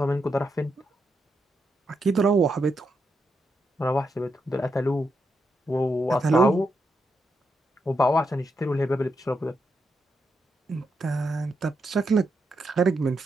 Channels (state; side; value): normal; both; correlation 0.83